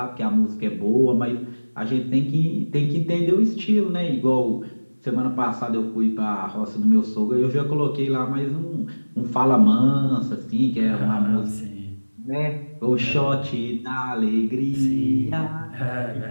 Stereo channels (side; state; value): both; inverted; correlation -1.00